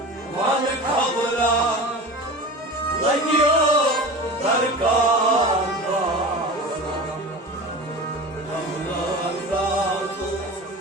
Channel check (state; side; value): normal; both; correlation 0.32